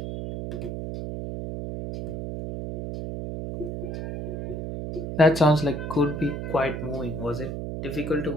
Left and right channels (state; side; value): noise; right; hum, 5 dB below the sound